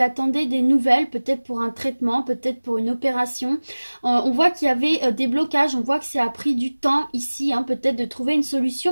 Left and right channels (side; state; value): both; inverted; correlation -1.00